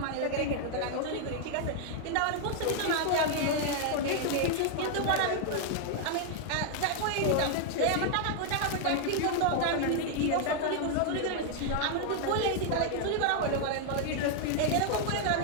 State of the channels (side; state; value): both; different; correlation 0.00